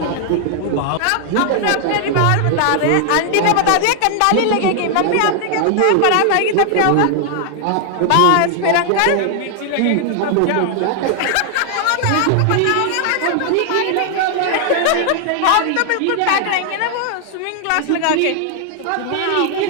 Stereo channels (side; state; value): both; different; correlation 0.00